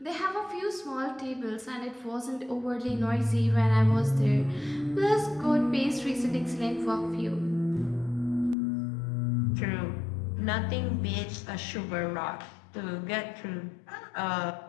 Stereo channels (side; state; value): right; drops out; at 8.6 s